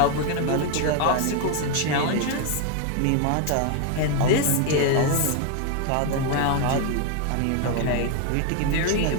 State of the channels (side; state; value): both; different; correlation 0.01